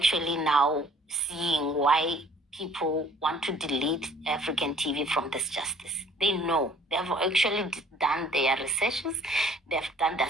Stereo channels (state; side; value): normal; both; correlation 0.55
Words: now seeing why people want to delete African TV from this justice. They know. They have actually done their researches. They have done their